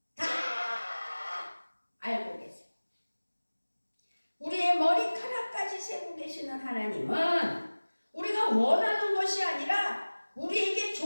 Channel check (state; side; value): inverted; both; correlation -1.00